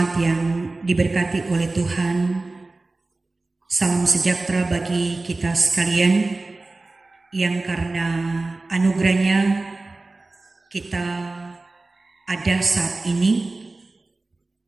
yang diberkati oleh Tuhan. Salam sejahtera bagi kita sekalian yang karena anugerahnya kita ada saat ini,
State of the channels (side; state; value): left; quieter; 3.2 dB